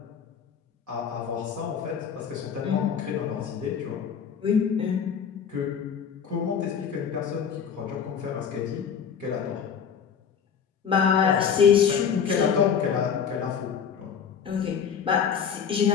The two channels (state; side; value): quieter; right; 7.3 dB